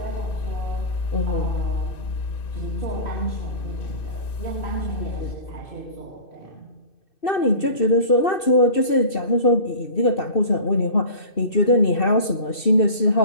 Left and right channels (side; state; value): right; late; 2.6 ms